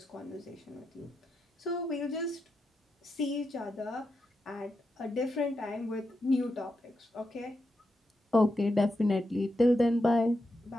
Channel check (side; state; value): both; normal; correlation 0.86